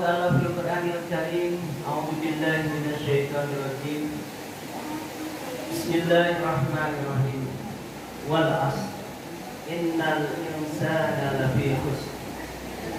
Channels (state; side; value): identical; both; correlation 1.00